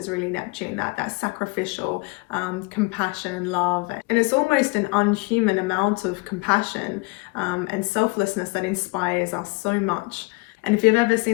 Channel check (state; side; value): quieter; right; 26.1 dB